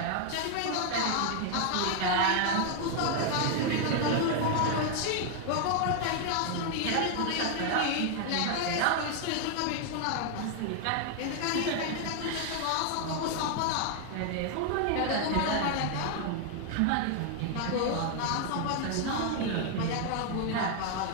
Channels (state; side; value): different; both; correlation 0.00